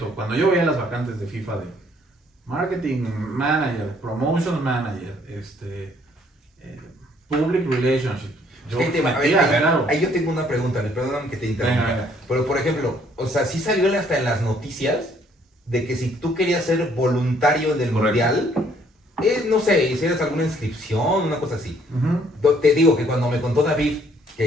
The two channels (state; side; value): normal; both; correlation 0.64